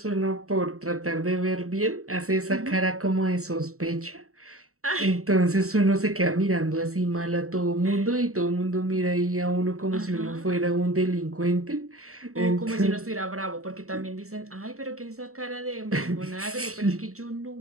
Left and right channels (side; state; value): left; late; 0.64 ms